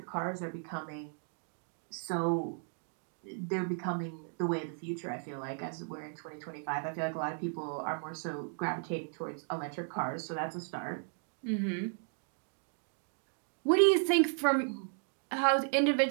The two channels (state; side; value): silent; left; 54 dB below the other